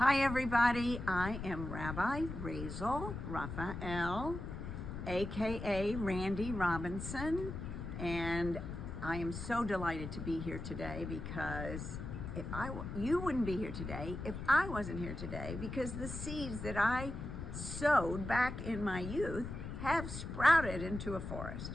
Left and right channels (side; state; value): left; noise; rumble, 7 dB below the sound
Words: Hi everybody, I am Rabbi Razel Raphael, aka Randy Robinson, and I am so delighted to be here today because you wouldn't be here today if I wasn't here today, because the seeds that I sowed back in my youth have sprouted into a